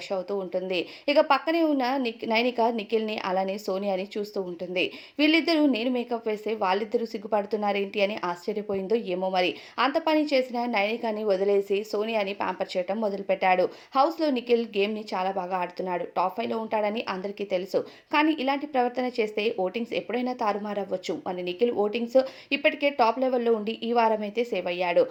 అవుతూ ఉంటుంది. ఇక పక్కనే ఉన్న నైనిక నిఖిల్‌ని అలానే సోనియాని చూస్తూ ఉంటుంది. వీళ్ళిద్దరూ నేను మేకప్ వేస్తే వాళ్ళిద్దరూ సిగ్గుపడుతున్నారేంటి అని ఆశ్చర్యపోయిందో ఏమో మరి. అంత పని చేసిన నైనికని వదిలేసి సోనియాని ప్యాంపర్ చేయటం మొదలుపెట్టాడు. హౌస్‌లో నిఖిల్ గేమ్‌ని చాలా బాగా ఆడుతున్నాడు. టాప్ 5లో ఉంటాడని అందరికీ తెలుసు. కానీ ఇలాంటి ప్రవర్తన చేస్తే ఓటింగ్స్ ఎప్పుడైనా తారుమారవ్వచ్చు. మరి నిఖిల్ ఓటింగ్స్ ఇప్పటికే టాప్ లెవెల్‌లో ఉండి ఈ వారమైతే సేవ్ అయ్యాడు.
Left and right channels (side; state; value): both; identical; correlation 1.00